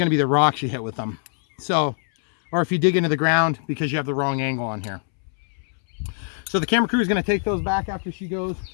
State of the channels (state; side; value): silent; right; 63 dB below the other